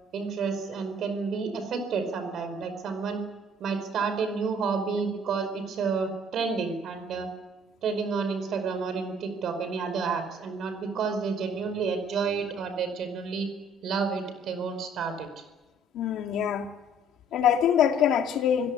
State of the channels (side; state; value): both; normal; correlation 0.57